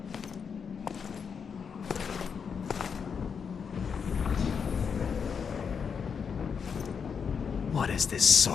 What is this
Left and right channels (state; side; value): quieter; right; 6.4 dB